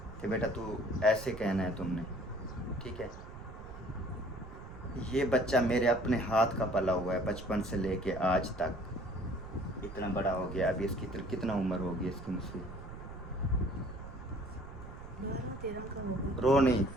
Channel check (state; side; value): noise; right; rumble, 13 dB below the sound